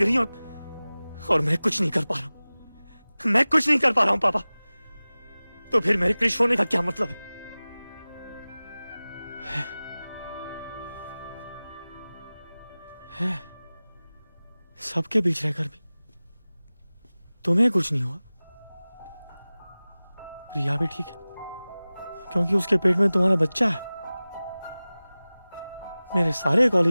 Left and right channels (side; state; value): both; inverted; correlation -0.98